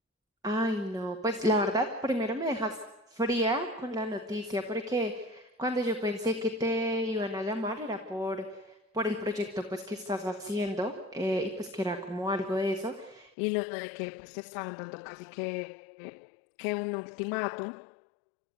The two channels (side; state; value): right; drops out; at 13.3 s